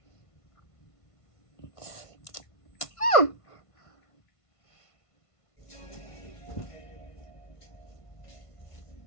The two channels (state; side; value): late; right; 1.5 ms